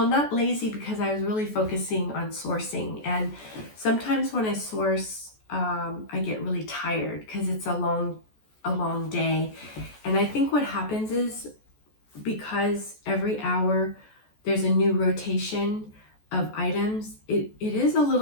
not lazy because I was really focusing on sourcing. And sometimes when I source, I get really tired because it's a long day. And I think what happens is because every hour there's a new rotation, of items, it is a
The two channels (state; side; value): late; right; 14 ms